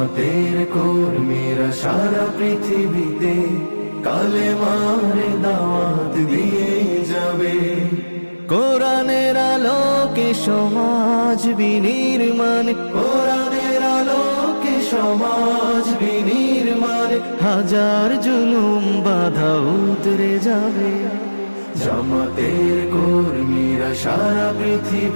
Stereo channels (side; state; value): both; inverted; correlation -1.00